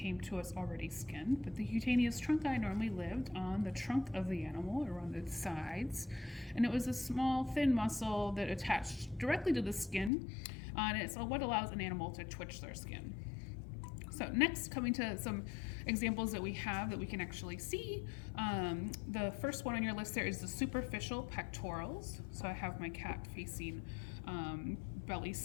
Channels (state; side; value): drops out; right; at 10.1 s